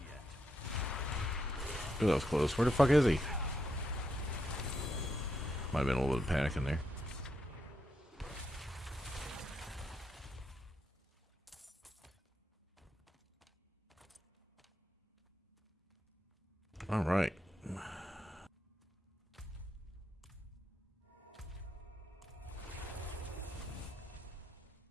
yet. Ooh, that was close. Where the fuck is he? Might have been a little bit of panic in there. All right.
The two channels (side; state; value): both; normal; correlation 0.82